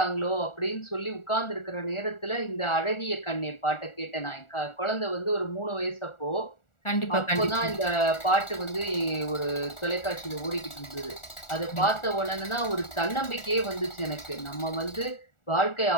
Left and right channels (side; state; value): right; late; 1.4 ms